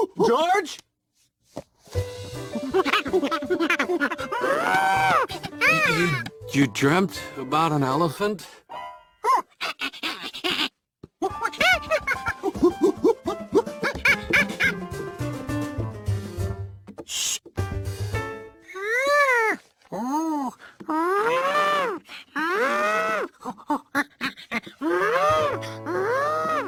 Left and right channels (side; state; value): both; identical; correlation 1.00